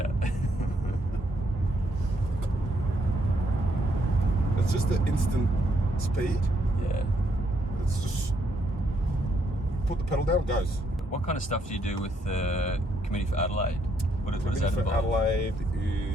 It's just the instant speed. Yeah. It's just put the pedal down, it goes. What kind of stuff do you do with the Committee for Adelaide? What does that For involve? Adelaide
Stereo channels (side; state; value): both; normal; correlation 0.74